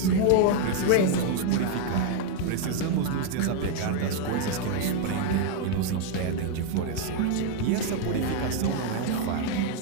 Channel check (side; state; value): both; different; correlation 0.01